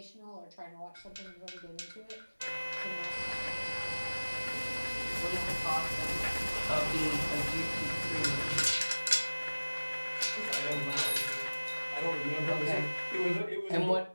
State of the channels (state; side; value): inverted; both; correlation -1.00